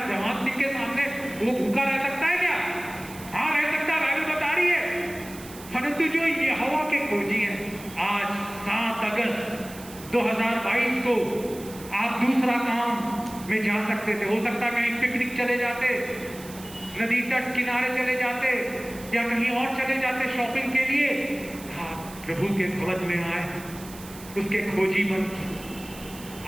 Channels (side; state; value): right; noise; hiss, 17 dB below the sound